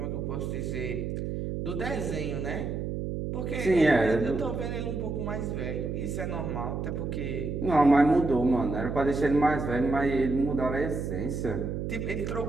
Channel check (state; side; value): noise; right; hum, 3 dB below the sound